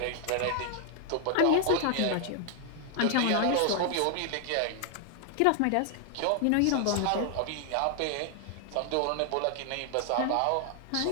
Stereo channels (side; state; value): both; different; correlation 0.00